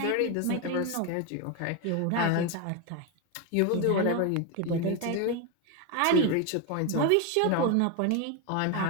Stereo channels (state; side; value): different; both; correlation 0.02